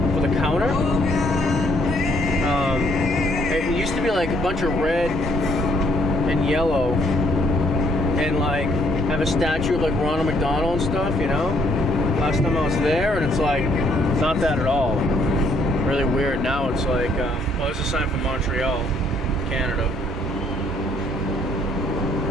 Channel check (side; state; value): both; normal; correlation 0.67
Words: for the counter. It used to be like a bunch of red and yellow, and like have a statue of like Ronald McDonald and stuff, you know. Last time I was there, and it's like not that at all. Really weird. Now it's like, well, there's a sign from Montreal, Canada.